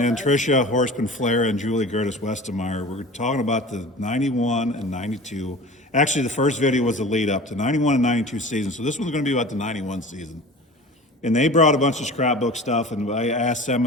Tricia Horseman-Flair and Julie Gertis-Westermeyer. We're talking about the 91 and 92. Actually, the first video was the lead up to 91 and 92 season, so this one's going to be about the 91 season. And they brought a bunch of scrapbook stuff, and I asked them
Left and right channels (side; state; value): both; normal; correlation 0.38